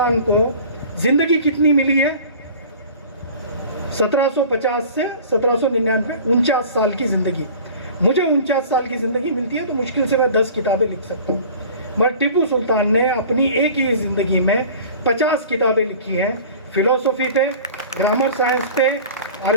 को जिंदगी कितनी मिली है? 1750 से 1799, 49 साल की ज़िंदगी। मुझे 49 साल की ज़िंदगी मिलती है तो मुश्किल से मैं 10 किताबें लिख सकता हूँ, मगर टिपू सुल्तान ने अपनी एक ही ज़िंदगी में 50 किताबें लिखी हैं। फिलोसफी पे, ग्रामर साइंस पे,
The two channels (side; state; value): both; inverted; correlation -0.42